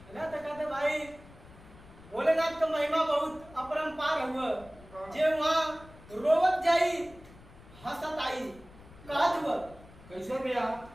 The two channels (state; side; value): noise; left; rumble, 21 dB below the sound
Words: ना? तो कहते भाई भोलेनाथ का महिमा बहुत अपरंपार हुआ, जे वहां रोवत जाई हंसत आई। कहत हुआ कैसे भैया?